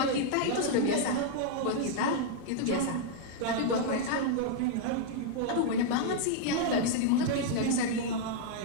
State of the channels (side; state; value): both; different; correlation 0.00